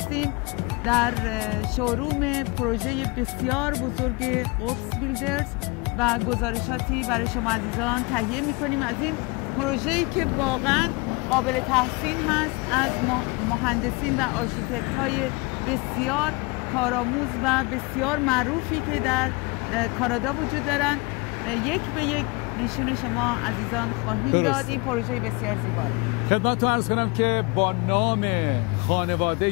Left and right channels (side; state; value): right; quieter; 26.9 dB